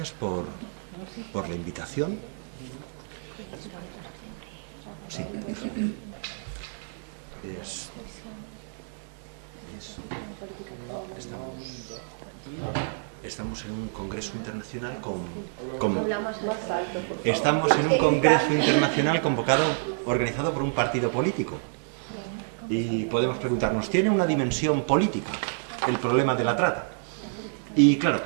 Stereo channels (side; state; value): left; silent; 59 dB below the other